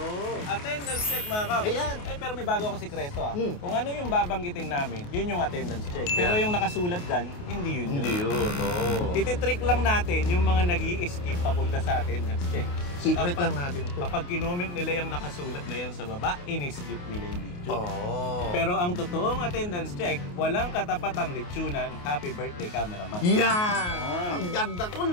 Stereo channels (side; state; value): right; late; 28 ms